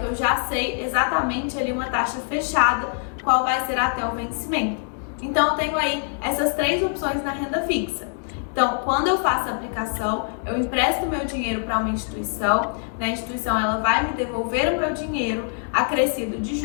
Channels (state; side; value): silent; right; 63 dB below the other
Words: eu já sei exatamente ali uma taxa fechada, qual vai ser até o vencimento. Então, eu tenho aí essas três opções na renda fixa. Então, quando eu faço a aplicação, eu empresto meu dinheiro para uma instituição, a instituição ela vai me devolver o meu dinheiro acrescido de